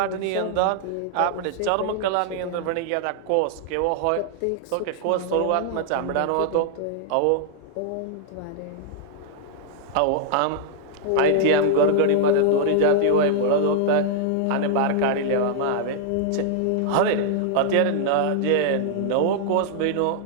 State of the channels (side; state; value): both; different; correlation -0.01